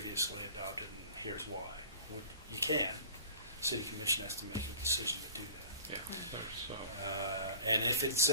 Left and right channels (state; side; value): inverted; both; correlation -0.44